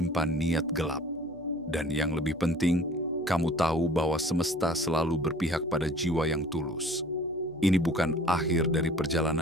niat gelap. Dan yang lebih penting, kamu tahu bahwa semesta selalu berpihak pada jiwa yang tulus. Ini bukan akhir dari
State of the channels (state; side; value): noise; left; hum, 27 dB below the sound